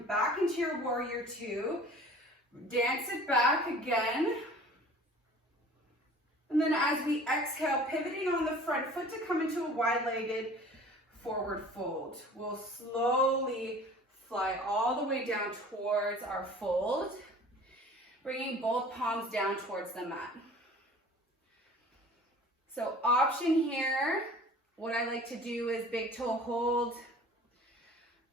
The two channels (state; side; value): normal; both; correlation 0.46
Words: back into your warrior two, dance it back again. And then as we exhale, pivoting on the front foot to come into a wide-legged forward fold. We'll slowly fly all the way down towards our fold, bringing both palms down towards the mat. So option here, what I like to do is big toe hold,